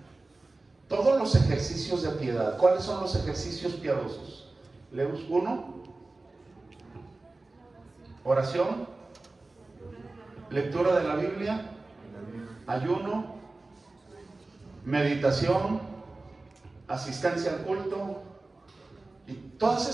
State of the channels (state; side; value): quieter; left; 3.2 dB